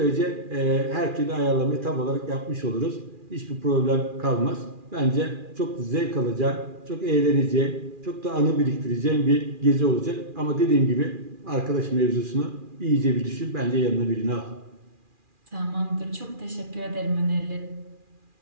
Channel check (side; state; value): left; late; 2.4 ms